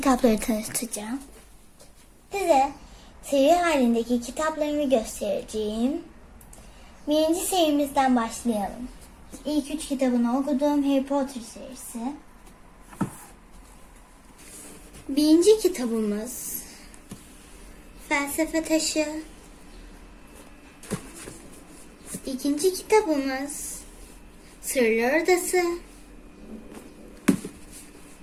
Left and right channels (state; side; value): identical; both; correlation 1.00